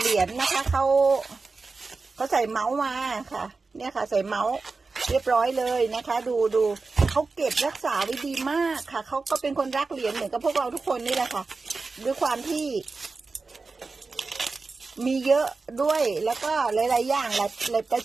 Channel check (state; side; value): quieter; left; 4.1 dB